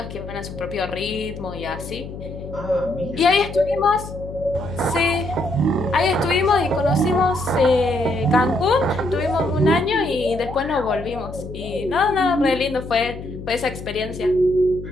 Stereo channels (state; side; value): noise; left; hum, 11 dB below the sound